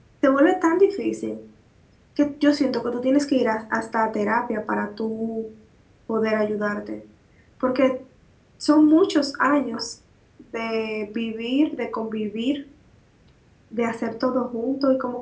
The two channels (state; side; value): identical; both; correlation 1.00